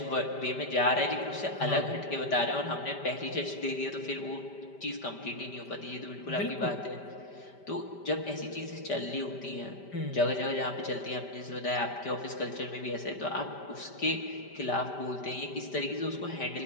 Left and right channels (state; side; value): late; right; 5.1 ms